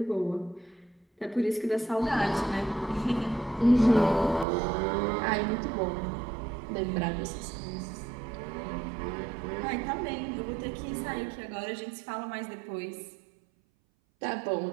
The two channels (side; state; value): left; drops out; at 4.5 s